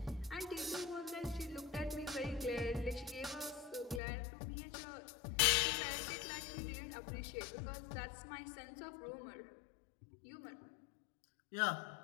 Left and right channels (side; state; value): right; drops out; at 4.0 s